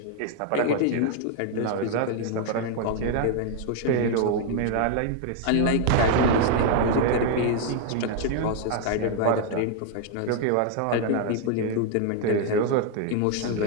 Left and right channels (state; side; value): different; both; correlation 0.00